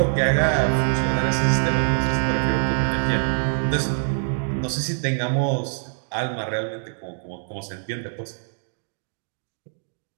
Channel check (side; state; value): left; silent; digital silence